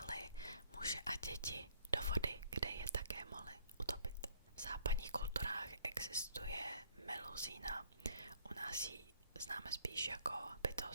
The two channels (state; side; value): inverted; both; correlation -0.62